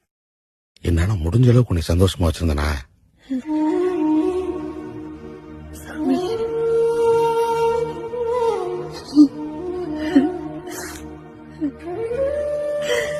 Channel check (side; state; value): both; identical; correlation 1.00